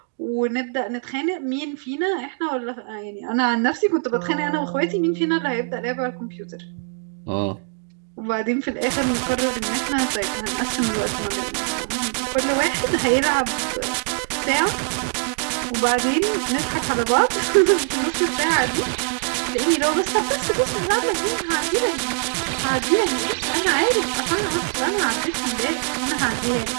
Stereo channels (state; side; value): silent; left; digital silence